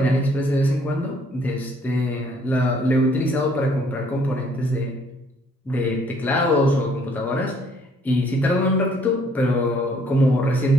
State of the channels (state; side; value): normal; both; correlation 0.63